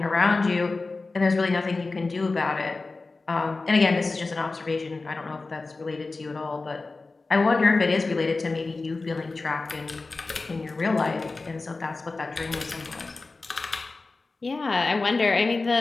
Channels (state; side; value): quieter; right; 3.6 dB